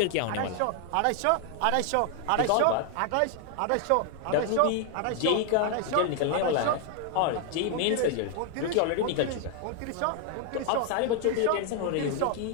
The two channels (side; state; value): both; different; correlation 0.00